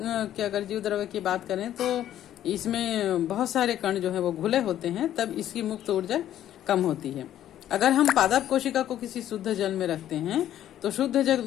के अगर जीव द्रव्य की बात करें तो इसमें बहुत सारे कण जो है वो घुले होते हैं, तब इसकी मुक्त ऊर्जा कम होती है। अगर हम पादप कोशिका को किसी शुद्ध जल में रखते हैं तो शुद्ध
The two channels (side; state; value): right; quieter; 11.7 dB